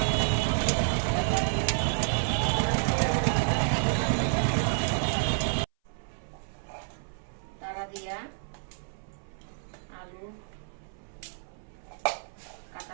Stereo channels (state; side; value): silent; left; 58 dB below the other